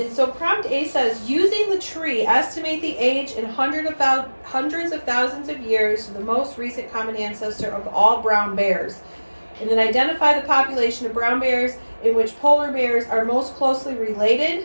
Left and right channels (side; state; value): both; inverted; correlation -1.00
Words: so prompt A says, using the tree, estimate the age in hundreds of thousands of years to the most recent common ancestor of all brown bears. And then identify the population of brown bears in which polar bears are most closely